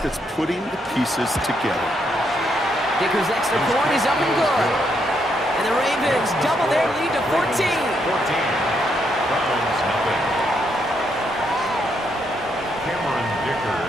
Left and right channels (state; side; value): normal; both; correlation 0.77